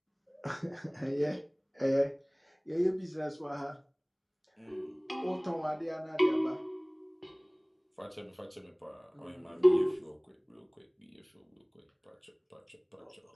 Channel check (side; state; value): both; identical; correlation 1.00